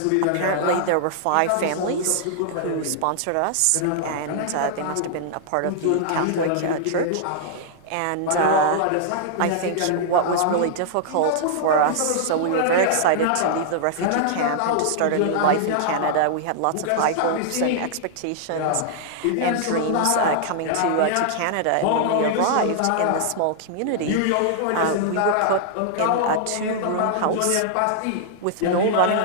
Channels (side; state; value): both; different; correlation -0.01